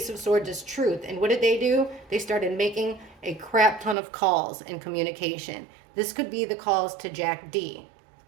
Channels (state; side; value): drops out; left; at 4.0 s